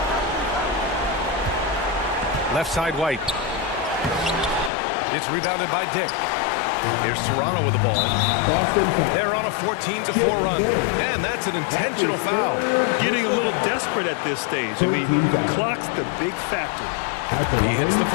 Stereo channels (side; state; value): right; drops out; at 4.7 s